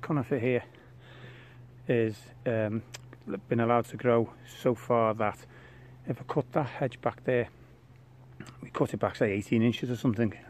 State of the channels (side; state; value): both; identical; correlation 1.00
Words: here is been allowed to grow so far that if I cut that hedge back there, we cut it back say 18 inches or something,